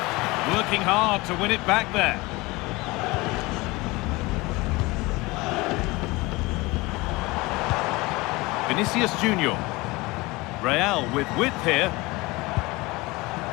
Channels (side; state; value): right; quieter; 22.6 dB